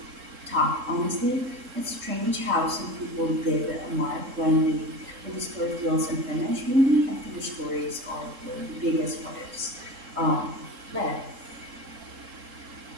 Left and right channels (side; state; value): left; late; 3.7 ms